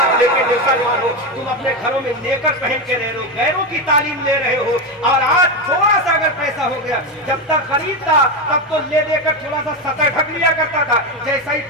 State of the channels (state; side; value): normal; both; correlation 0.13